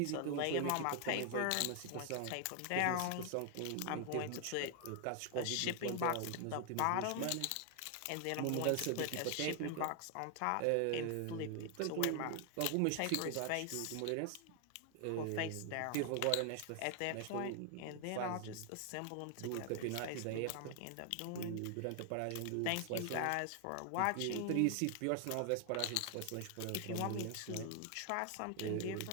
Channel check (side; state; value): both; different; correlation 0.00